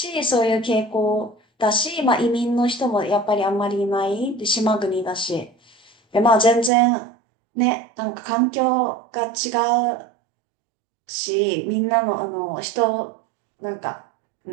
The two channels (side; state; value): left; drops out; at 6.7 s